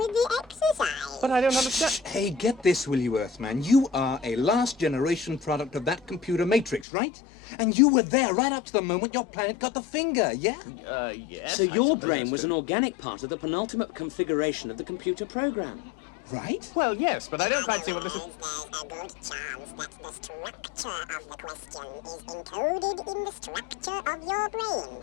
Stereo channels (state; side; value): drops out; right; at 6.9 s